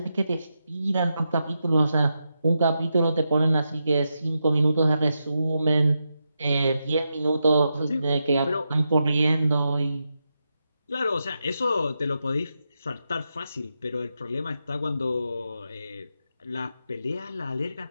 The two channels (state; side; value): inverted; both; correlation -0.86